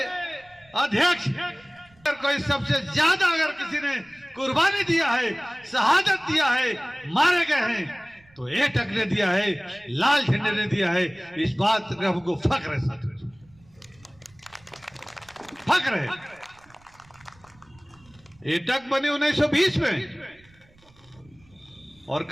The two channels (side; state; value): right; noise; rumble, 29 dB below the sound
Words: अध्यक्ष कोई सबसे ज्यादा अगर किसी ने कुर्बानी दिया है, शहादत दिया है, मारे गए हैं, तो एटक ने दिया है, लाल झंडे ने दिया है। इस बात का हमको फख्र है साथियों, फख्र है। एटक बने 1920 में और